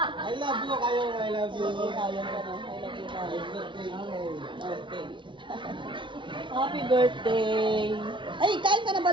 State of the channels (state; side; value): late; left; 0.24 ms